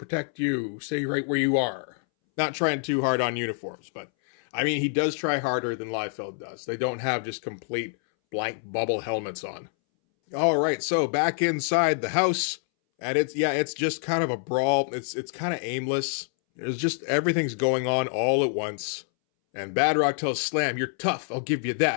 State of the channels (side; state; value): right; silent; 60 dB below the other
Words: you. Stay right where you are. Not trying too hard on uniforms, but... I mean, he does try harder than Liefeld does. They don't have just complete blank bubble helmets on. All right, so back inside the house, and it's just kind of a brawl. It's kind of aimless. There's just everything's going on all at once. And Badrock tells Slam, "You're tough. I'll give you